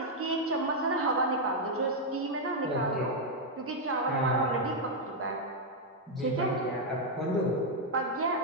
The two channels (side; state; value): both; normal; correlation -0.01